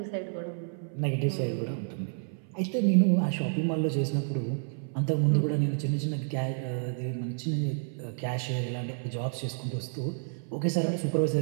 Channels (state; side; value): silent; left; 56 dB below the other